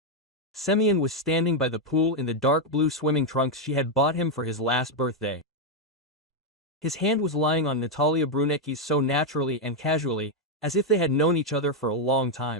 Semyon was standing by the pool in the dark blue swimming trunks she had bought him for his last birthday. His hand was lying on Natalia Brunecki's so naturally and casually, as if they had known each other for a long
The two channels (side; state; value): both; normal; correlation 0.02